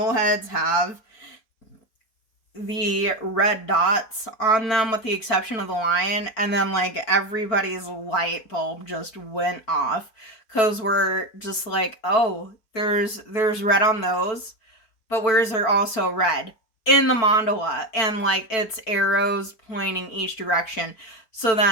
heads have the red dots on them with the exception of the lion? And then like everybody's light bulb just went off, because we're just like, oh, there's red on those, but where is there also red? In the mandala, and like it's arrows pointing each direction. So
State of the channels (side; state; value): right; late; 4.5 ms